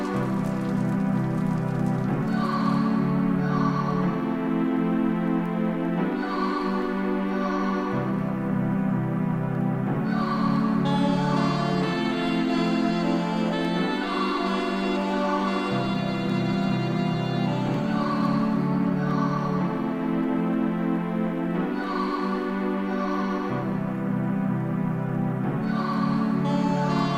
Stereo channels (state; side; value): identical; both; correlation 1.00